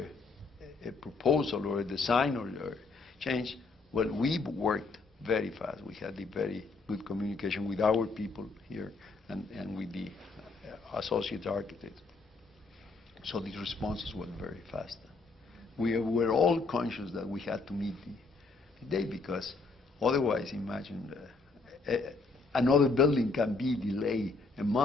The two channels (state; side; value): quieter; right; 3.9 dB